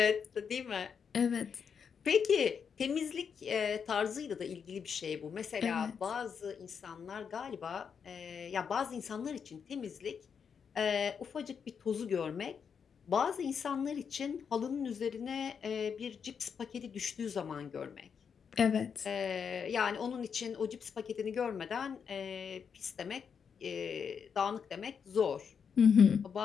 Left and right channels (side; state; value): right; quieter; 6.7 dB